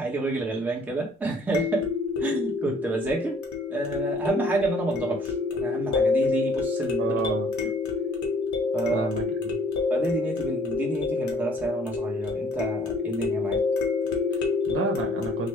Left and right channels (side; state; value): both; normal; correlation 0.58